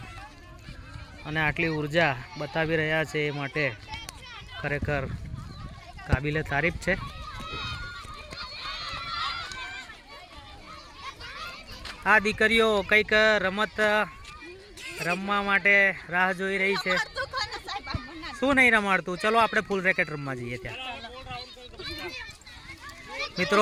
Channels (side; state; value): both; identical; correlation 1.00